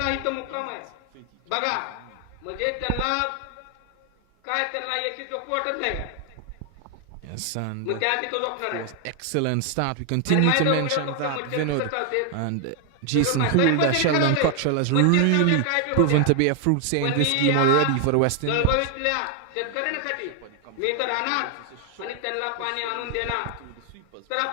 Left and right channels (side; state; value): both; different; correlation 0.00